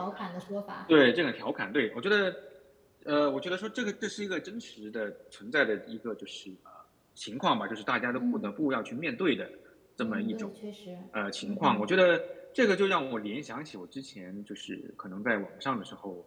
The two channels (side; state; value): both; identical; correlation 1.00